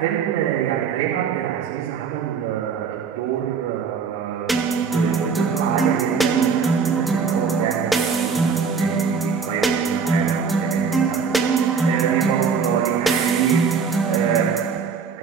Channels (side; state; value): left; quieter; 5.9 dB